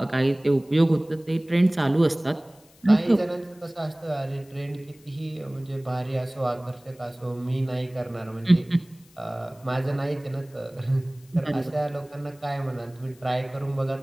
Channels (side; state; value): left; noise; hiss, 29 dB below the sound